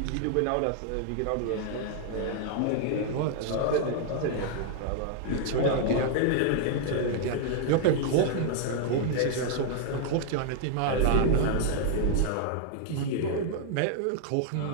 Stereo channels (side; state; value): both; different; correlation 0.00